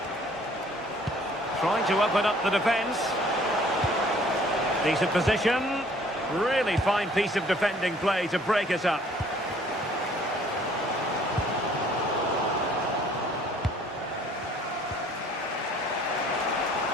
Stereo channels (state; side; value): normal; both; correlation 0.57